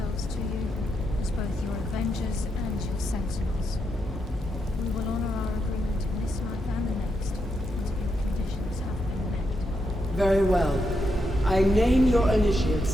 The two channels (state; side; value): normal; both; correlation 0.82